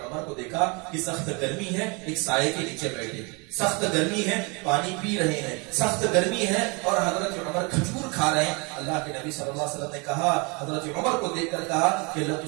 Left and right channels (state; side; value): quieter; left; 30.3 dB